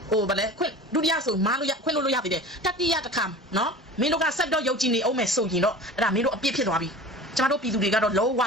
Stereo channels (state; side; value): normal; both; correlation 0.38